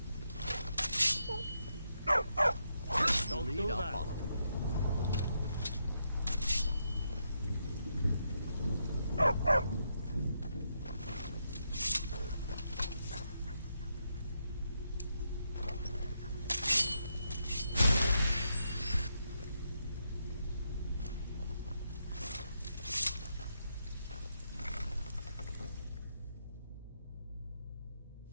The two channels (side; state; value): both; inverted; correlation -0.81